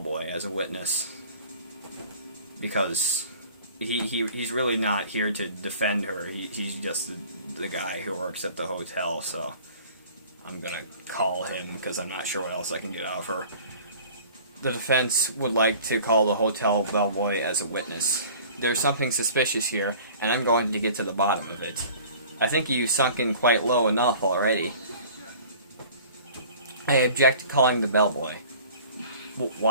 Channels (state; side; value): inverted; both; correlation -0.47